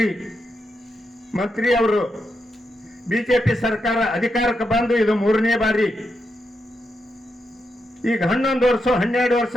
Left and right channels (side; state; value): both; normal; correlation 0.84